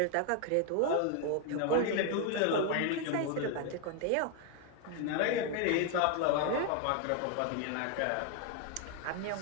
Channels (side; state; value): both; different; correlation 0.01